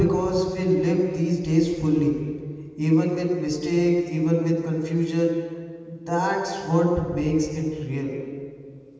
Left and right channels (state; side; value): identical; both; correlation 1.00